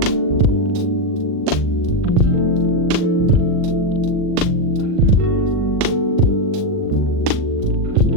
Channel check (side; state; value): left; late; 39 ms